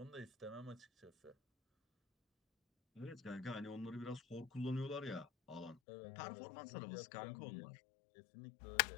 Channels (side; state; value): right; drops out; at 5.8 s